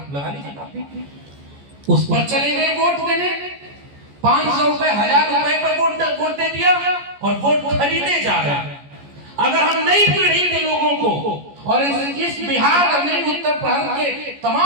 लगा लीजिए, उस पर चले गए वोट देने। 500 रुपए 1000 रुपए पर वोट दे दिया और वोट खरीदे जा रहे हैं। अगर हम नई पीढ़ी के लोगों को और इस बिहार और नई उत्तर भारत के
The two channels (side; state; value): left; late; 14 ms